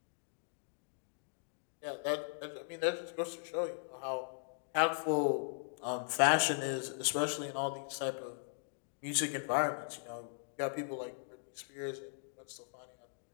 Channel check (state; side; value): silent; right; digital silence